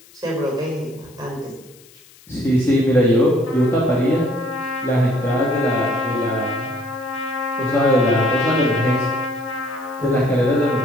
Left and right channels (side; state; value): left; noise; hiss, 26 dB below the sound